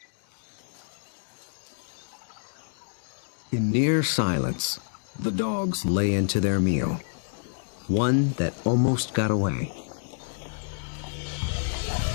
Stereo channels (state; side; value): silent; right; digital silence